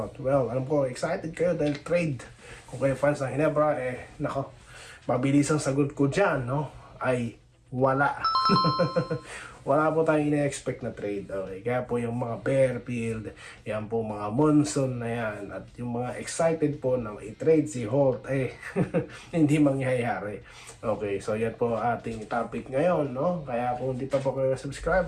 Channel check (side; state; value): both; identical; correlation 1.00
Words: Well, alam ko, excited kayo dahil trade. Kung kayo fans ng Ginebra, nako, mabilis ang sagot ko dyan, no? Ay, wala. Wala po tayong ina-expect na trade. Okay? Kaya po yung mga Bearfield, yan po mga Monson na yan, at yung mga excited po na i-trade si Holt, hindi mangyayari. Okay, so yan po ating topic ngayon, no? Kaya kung hindi pa po kayo